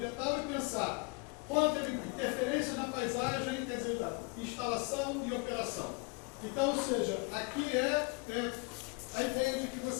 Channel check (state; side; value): quieter; right; 29.9 dB